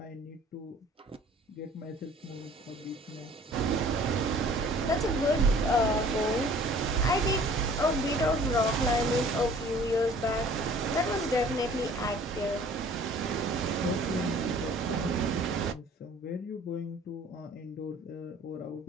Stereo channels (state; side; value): normal; both; correlation 0.52